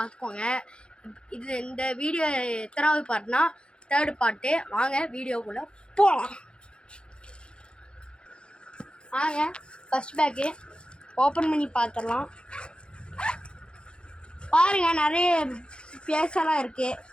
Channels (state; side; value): late; right; 0.053 ms